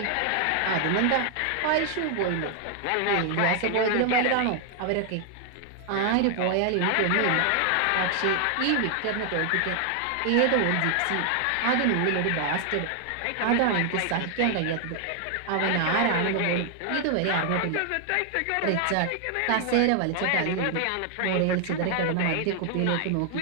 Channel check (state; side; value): different; both; correlation 0.00